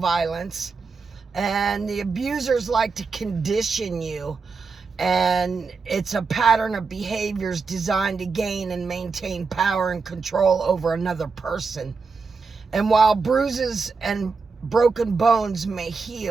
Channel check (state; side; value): quieter; left; 4.7 dB